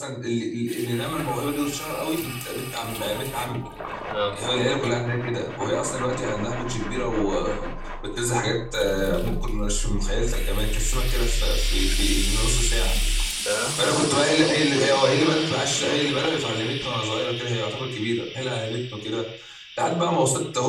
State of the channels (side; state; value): both; identical; correlation 1.00